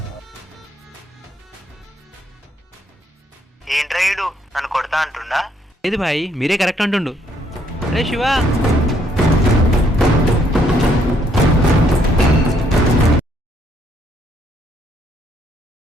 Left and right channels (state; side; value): normal; both; correlation 0.70